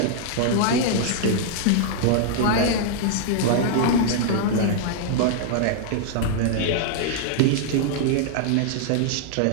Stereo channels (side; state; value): both; different; correlation -0.01